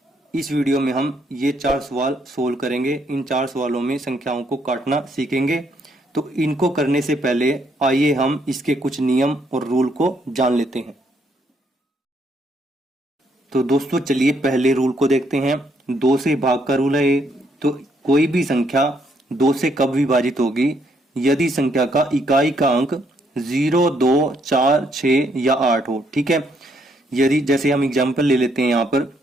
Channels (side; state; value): both; normal; correlation 0.72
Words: इस वीडियो में हम ये 4 सवाल सोल्व करेंगे। इन 4 सवालों में संख्याओं को काटना सीखेंगे। तो इनको करने से पहले आइए हम इसके कुछ नियम और रूल को जान लेते हैं। तो दोस्तों चलिए पहले रूल को देखते हैं। 2 से भाग का रूल है ये। तो कोई भी संख्या 2 से कब विभाजित होगी? यदि संख्या का इकाई का अंक 0, 2, 4, 6 या 8 हो। ठीक है, यदि जैसे हम एग्जांपल ले लेते हैं यहाँ पर